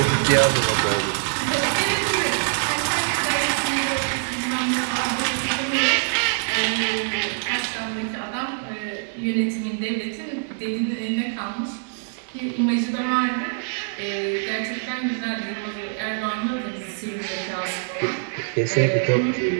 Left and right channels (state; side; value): silent; left; 62 dB below the other